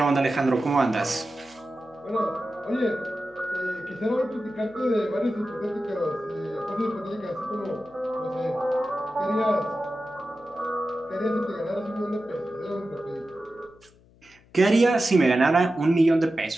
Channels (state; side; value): noise; left; hum, 28 dB below the sound